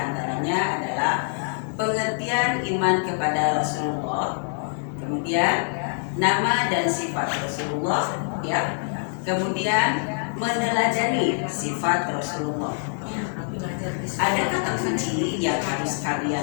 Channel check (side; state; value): right; silent; 62 dB below the other